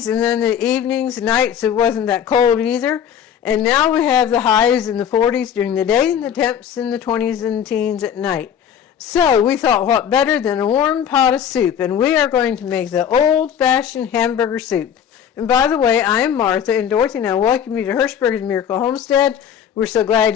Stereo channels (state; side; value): quieter; right; 8.8 dB